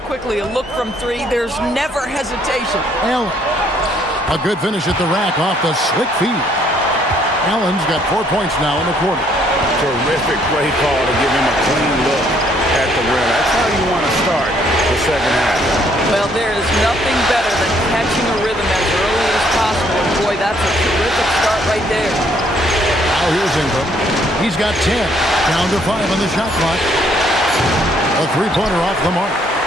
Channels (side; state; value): both; normal; correlation 0.66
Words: quickly a look from 3, there's never hesitation. Allen. A good finish at the rack off the slick feed. Allen's got 4 points now in the quarter. Terrific play call to give him a clean look at the rim. That's how you want to start the second half. Well, there is nothing better than catching a rhythm as early as possible. And boy, that's a terrific start right there. Now here's Ingram. He's got 10. Down to 5 on the shot clock. A 3-pointer off the mark.